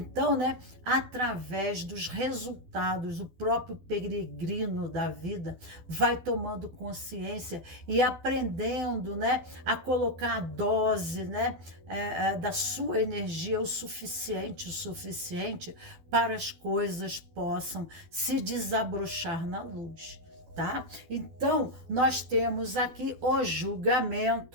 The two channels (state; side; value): late; left; 12 ms